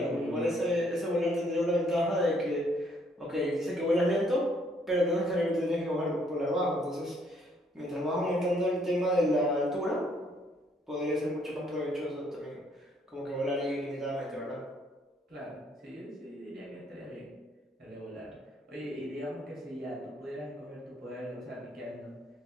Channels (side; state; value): both; normal; correlation 0.67